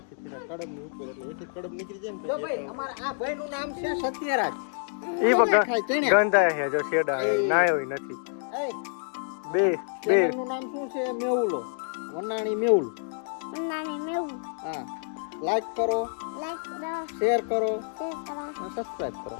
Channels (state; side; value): silent; right; 59 dB below the other